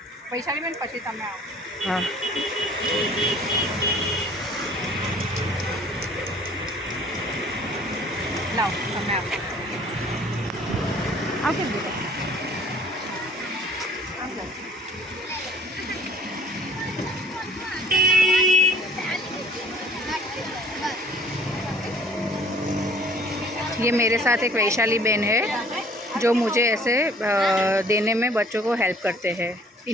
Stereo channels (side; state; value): both; normal; correlation 0.53